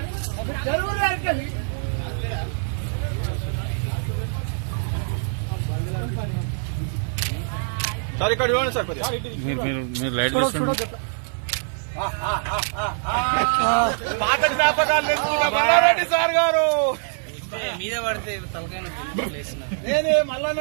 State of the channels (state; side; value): silent; left; 63 dB below the other